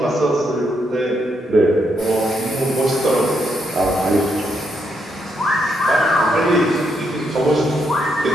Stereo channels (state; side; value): normal; both; correlation 0.78